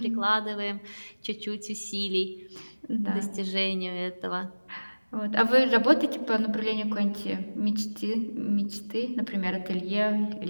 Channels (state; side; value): inverted; both; correlation -1.00